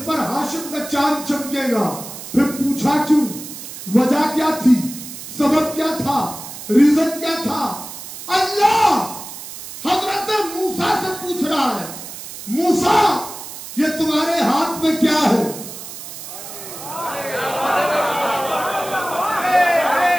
پر ہاشم کا چاند چمکے گا؟ پھر پوچھا کیوں؟ وجہ کیا تھی؟ سبب کیا تھا؟ ریزن کیا تھا؟ اللہ حضرت موسیٰ سے پوچھ رہا ہے، موسیٰ یہ تمہارے ہاتھ میں کیا ہے؟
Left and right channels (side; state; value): right; noise; hiss, 11 dB below the sound